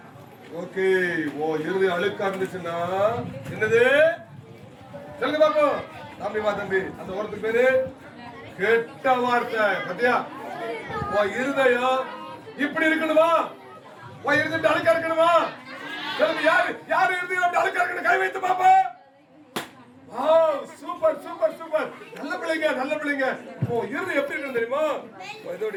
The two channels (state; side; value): identical; both; correlation 1.00